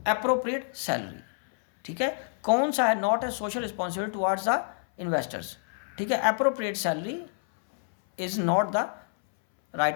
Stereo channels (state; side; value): silent; right; 60 dB below the other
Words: salary। ठीक है, कौन सा है not a social responsibility towards the investors? ठीक है, appropriate salary is not the